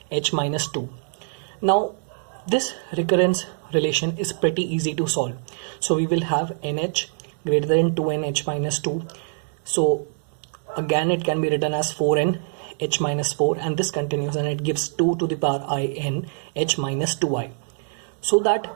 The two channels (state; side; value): silent; left; digital silence